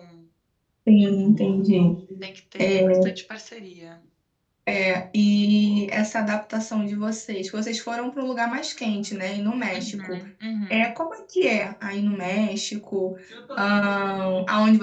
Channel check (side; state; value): both; identical; correlation 1.00